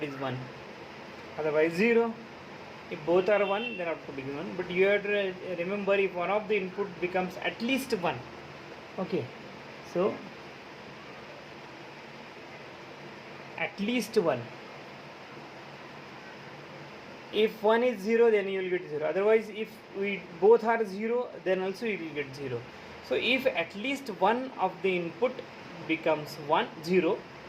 is 1, otherwise 0. If both are 1, then output is 1. But you have to remember, if one of the input becomes at least 1. Okay, so at least 1. If 1 is 0, then you will get 0. Otherwise, if we both are 0, then also you will get 0. So if at least one of the input becomes 0,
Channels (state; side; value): identical; both; correlation 1.00